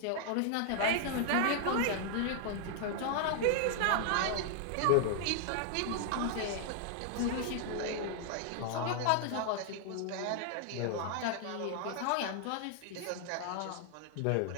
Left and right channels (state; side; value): different; both; correlation 0.00